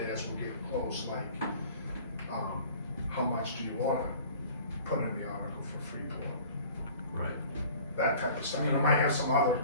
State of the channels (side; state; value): both; inverted; correlation -0.47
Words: as we're getting close, like, how much do you wanna put in the article for Freeport? Right. That type of stuff, and I might have some other